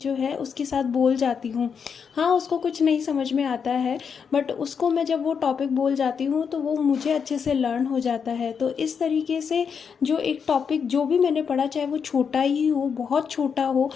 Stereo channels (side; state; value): right; quieter; 6.5 dB